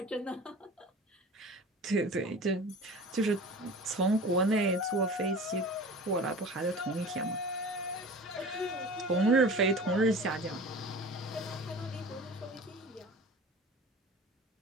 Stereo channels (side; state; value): both; normal; correlation 0.38